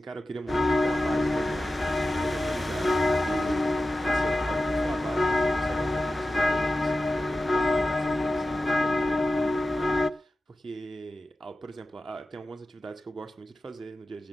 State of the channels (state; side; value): normal; both; correlation 0.94